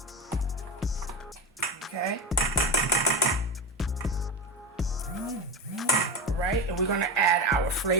Okay. All right, and we're going to add our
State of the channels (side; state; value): both; normal; correlation 0.19